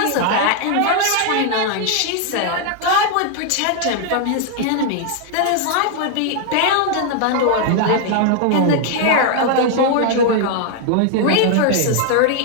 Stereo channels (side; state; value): both; different; correlation 0.00